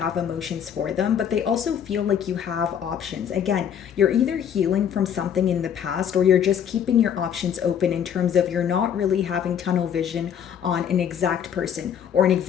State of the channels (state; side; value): quieter; right; 8.6 dB